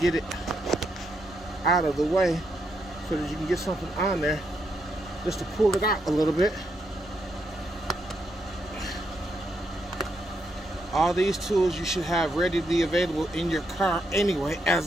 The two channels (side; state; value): both; normal; correlation 0.79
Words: it out of the way so that you can get something on there, just to pull it out a little bit. All these tools you should have readily available in your car anyway